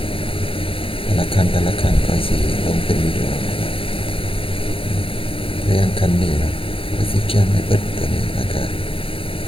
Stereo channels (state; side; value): late; right; 0.26 ms